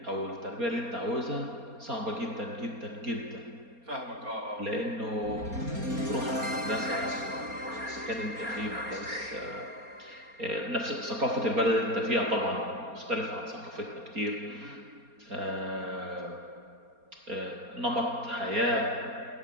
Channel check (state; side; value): late; left; 4.3 ms